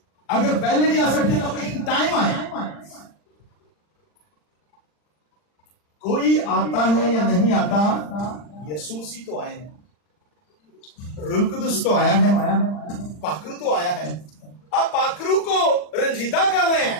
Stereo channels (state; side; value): late; right; 40 ms